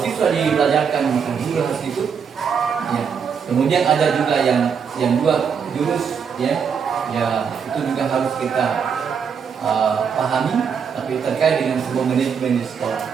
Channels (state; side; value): quieter; left; 6.7 dB